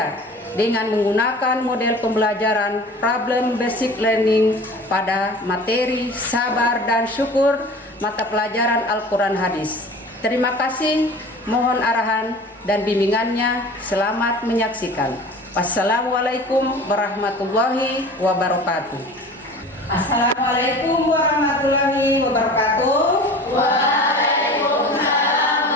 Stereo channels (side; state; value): both; normal; correlation 0.40